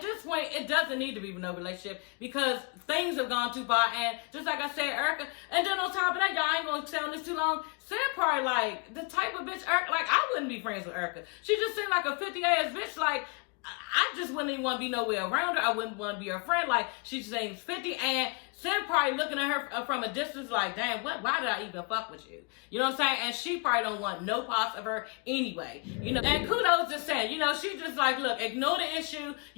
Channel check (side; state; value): right; quieter; 33.4 dB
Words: point it doesn't need to be no relationship because things have gone too far, and just like I said, Erica, and then on top of that, y'all ain't gonna stay on this too long. Sam probably like the type of bitch Erica, like I wouldn't be friends with Erica. She just seemed like a 50-ass bitch, like. I just wouldn't even want to be nowhere around her. I wouldn't want to be her friend. Like, she seems 50, and Sam probably looking at her from a distance like, damn, why did I even fuck with you? You know what I'm saying? And she probably don't want no parts of her anyway. And kudos to Sam. She just like, look, ignore the issue,